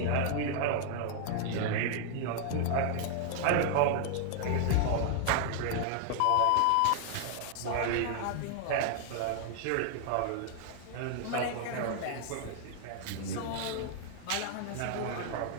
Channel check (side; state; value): both; different; correlation 0.00